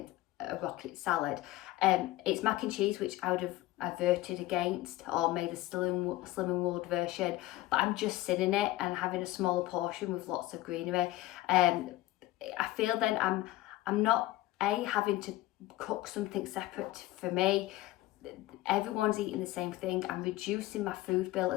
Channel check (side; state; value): right; quieter; 16.7 dB